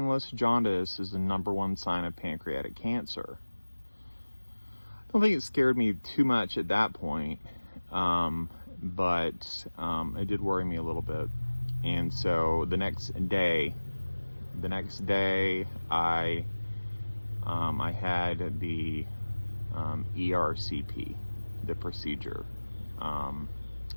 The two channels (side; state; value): both; inverted; correlation -1.00